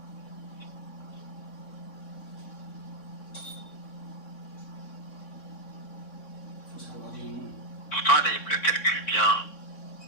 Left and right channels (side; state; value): right; late; 3.6 ms